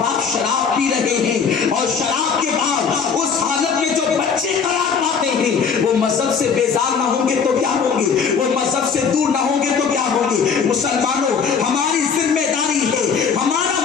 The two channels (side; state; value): right; quieter; 6.2 dB